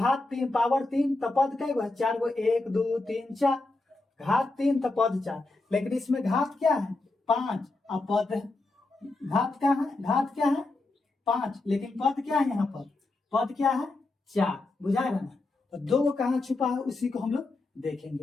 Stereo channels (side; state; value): right; quieter; 3.1 dB